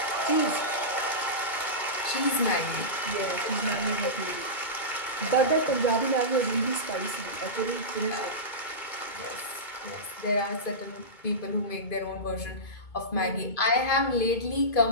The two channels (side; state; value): right; late; 2.3 ms